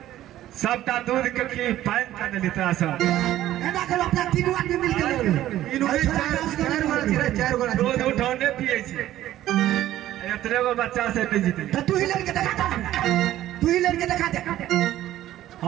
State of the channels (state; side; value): quieter; left; 13.6 dB